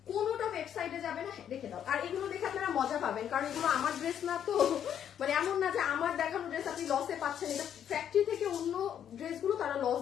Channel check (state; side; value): quieter; right; 9.4 dB